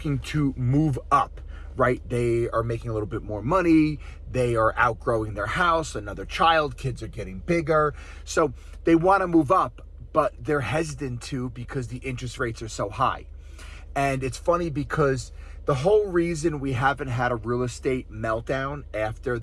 to move up, right? They are making a little bit more money. They are outgrowing their house, another child, kids are getting bigger. So they want to move up, but they're hesitant to because the interest rates are so high. And it's funny because the whole reason we haven't had a real estate meltdown after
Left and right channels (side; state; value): both; identical; correlation 1.00